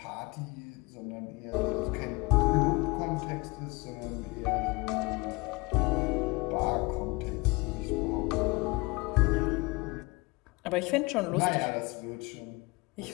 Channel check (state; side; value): quieter; right; 25.9 dB